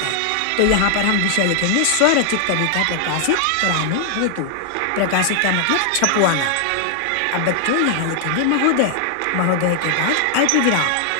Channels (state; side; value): different; both; correlation 0.00